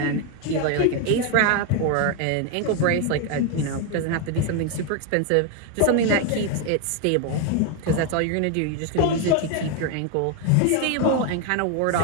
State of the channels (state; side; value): different; both; correlation 0.01